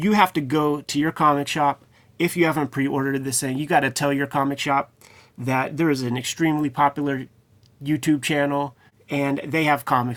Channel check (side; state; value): both; identical; correlation 1.00